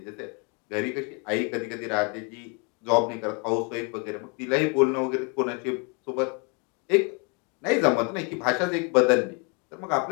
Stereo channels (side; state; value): right; quieter; 34.1 dB